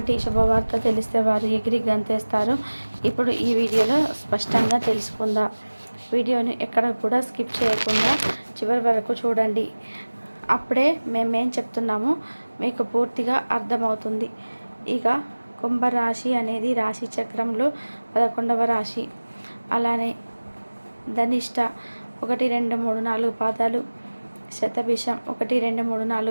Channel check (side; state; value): both; inverted; correlation -1.00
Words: శుభవార్త తెలిస్తే వారు ఎగిరి గంతేస్తారు, ఇప్పుడు ఈ వీడియోలో స్పష్టంగా తెలుసుకుందాం. వీడియోని ఎక్కడ కూడా స్కిప్ చేయకుండా చివరి వరకు చూడండి. అప్పుడే మేమేం చెప్తున్నామో మీకు పూర్తిగా అర్థమవుతుంది. ఇక కుంభరాశి అనేది రాశి చక్రంలో 11వ రాశి. అలానే ధనిష్ట 1, 2, 3, 4 పాదాలు, శతభిషం 1, 2, 3,